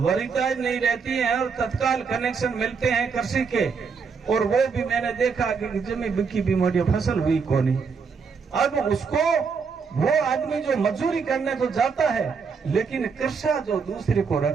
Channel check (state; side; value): quieter; left; 5.6 dB